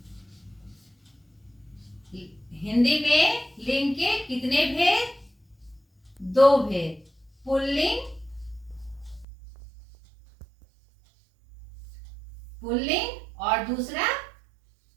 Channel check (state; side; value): drops out; left; at 9.2 s